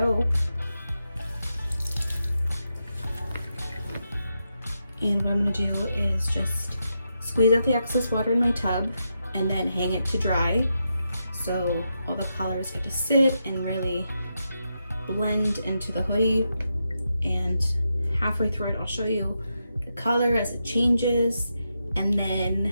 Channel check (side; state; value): both; inverted; correlation -0.85